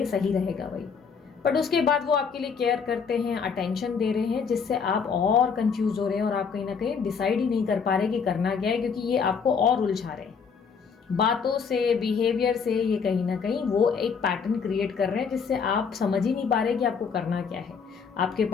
सही रहेगा भाई। बट उसके बाद वो आपके लिए केयर करते हैं, अटेंशन दे रहे हैं, जिससे आप और कंफ्यूज हो रहे हैं और आप कहीं ना कहीं डिसाइड ही नहीं कर पा रहे कि करना क्या है, क्योंकि ये आपको और उलझा रहे हैं बातों से, बिहेवियर से। ये कहीं ना कहीं वो एक पैटर्न क्रिएट कर रहे हैं जिससे आप समझ ही नहीं पा रहे कि आपको करना क्या है। आपके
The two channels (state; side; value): quieter; right; 6.0 dB